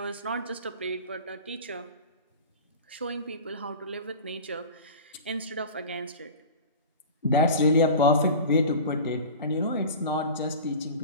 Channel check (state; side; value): inverted; both; correlation -0.35